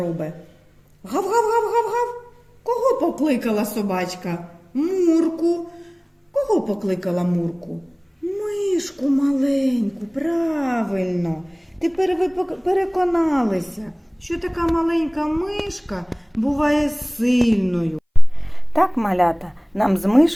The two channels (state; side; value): identical; both; correlation 1.00